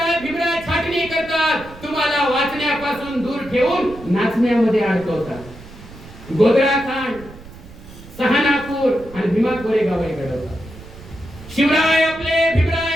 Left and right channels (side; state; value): right; noise; rumble, 18 dB below the sound